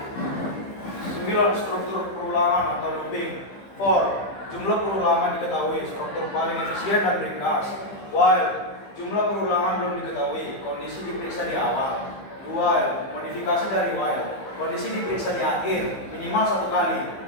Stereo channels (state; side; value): late; right; 15 ms